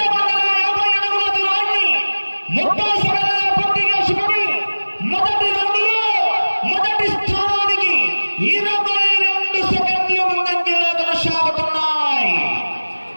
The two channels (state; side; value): inverted; both; correlation -1.00